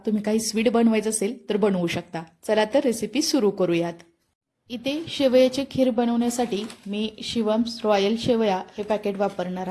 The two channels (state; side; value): identical; both; correlation 1.00